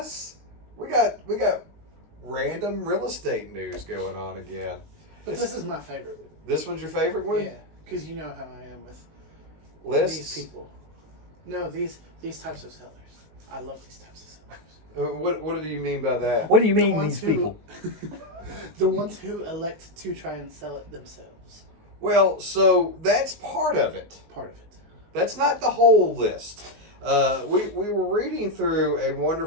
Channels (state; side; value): late; left; 19 ms